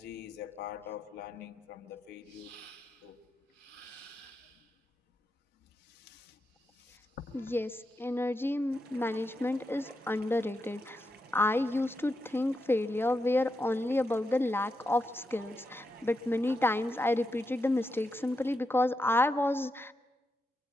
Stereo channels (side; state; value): both; normal; correlation 0.86